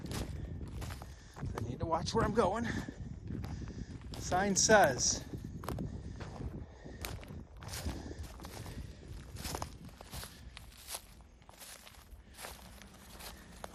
I need to watch where I'm going. The sign says,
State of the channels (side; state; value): both; identical; correlation 1.00